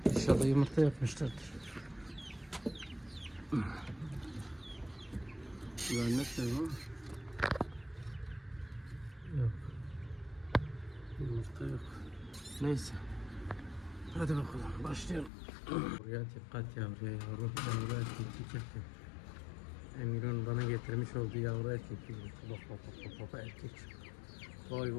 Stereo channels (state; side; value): drops out; right; at 15.3 s